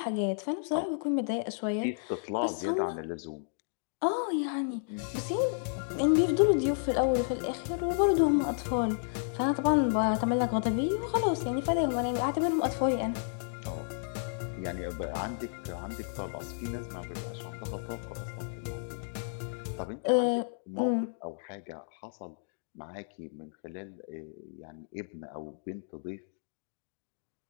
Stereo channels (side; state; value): right; silent; digital silence